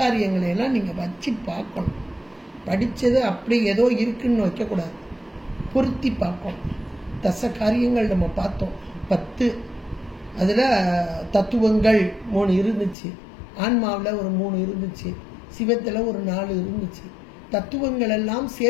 எல்லாம் நீங்க வச்சு பார்க்கணும். படிச்சது அப்படி ஏதோ இருக்குன்னு வைக்கக்கூடாது, பொருத்தி பார்க்கணும். தசகாரியங்கள் நம்ம பார்த்தோம் 10. அதுல தத்துவங்கள் 3 இருந்துச்சு, ஆன்மாவில் ஒரு 3 இருந்துச்சு, சிவத்துல ஒரு 4 இருந்துச்சு. தத்துவங்கள் எல்லாம்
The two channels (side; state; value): right; drops out; at 13.0 s